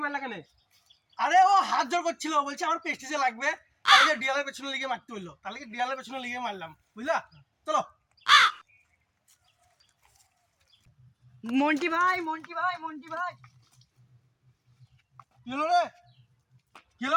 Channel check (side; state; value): both; identical; correlation 1.00